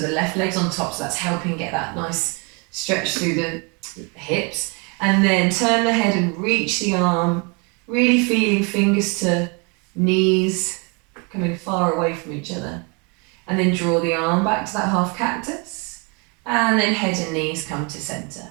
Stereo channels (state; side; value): quieter; left; 32.3 dB